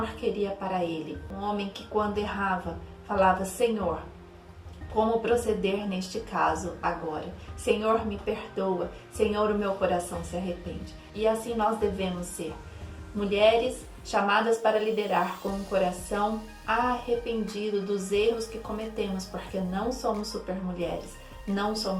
queria para ele. Um homem que, quando errava, falava: Senhor, como proceder neste caso agora? Senhor, me perdoa. Senhor, o meu coração se arrepende. E assim nós devemos ser. Mulheres chamadas para liderar com um coração arrependido dos erros que cometemos, porque não somos supermulheres, não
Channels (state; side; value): identical; both; correlation 1.00